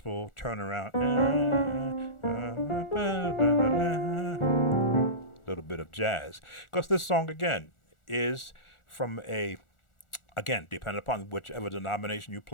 turnaround. Little bit of jazz, because this song again is from a, again, depending upon whichever denomination you're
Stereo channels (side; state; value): right; late; 1.4 ms